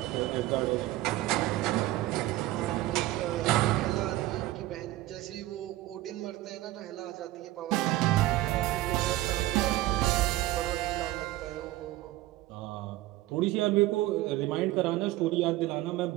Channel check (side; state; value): left; quieter; 16.4 dB